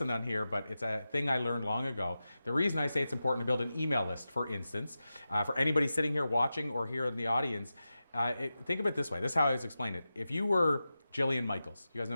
on here, but it's a thing I learned long ago. The reason I say it's important to build an email list, for instance, for anybody sitting here watching or here in the audience, think of it this way. This is how I always explain it. If you were Jillian Michaels, you guys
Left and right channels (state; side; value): inverted; both; correlation -0.93